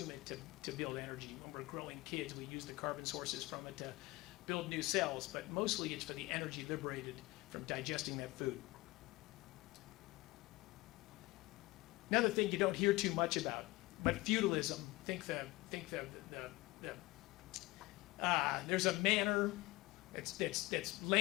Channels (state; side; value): quieter; right; 20.8 dB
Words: it to build energy. When we're growing kids, we use the carbon sources from it to build new cells, but mostly it's for the energy liberated from digesting that food. Another thing you don't hear too much about, but feudalism. There's a manor. It's